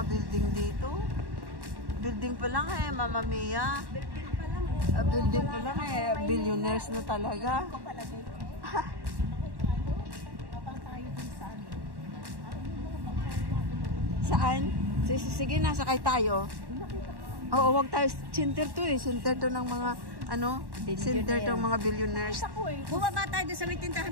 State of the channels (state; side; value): late; left; 1.1 ms